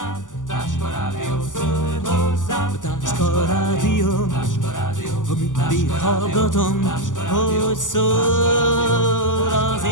Táska rádió, ha mindig hallgatom, hogy szól az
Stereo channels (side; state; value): right; late; 0.87 ms